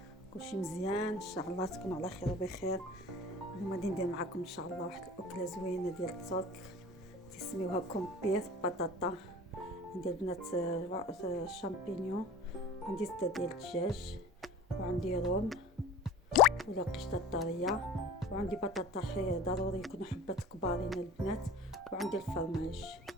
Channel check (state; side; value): normal; both; correlation 0.40